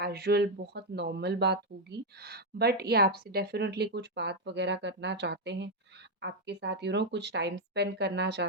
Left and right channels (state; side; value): normal; both; correlation 0.02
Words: बहुत नॉर्मल बात होगी। बट ये आपसे डेफ़िनेटली कुछ बात वग़ैरह करना चाहते हैं। आपके साथ कुछ टाइम स्पेंड करना